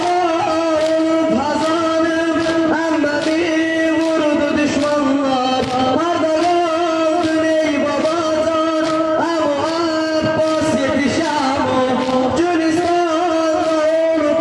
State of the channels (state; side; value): identical; both; correlation 1.00